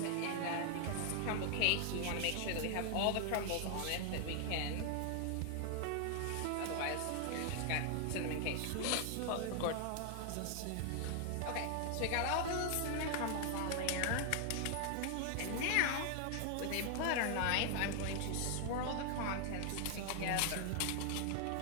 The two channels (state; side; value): different; both; correlation 0.00